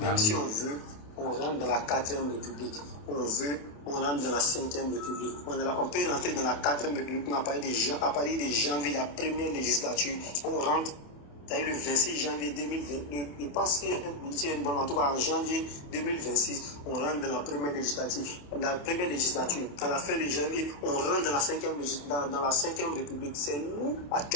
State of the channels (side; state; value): right; late; 28 ms